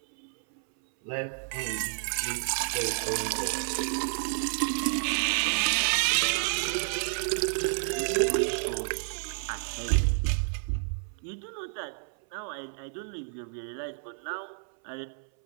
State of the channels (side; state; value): left; silent; 58 dB below the other